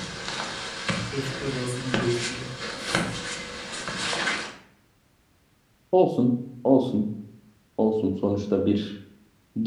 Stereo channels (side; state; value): both; identical; correlation 1.00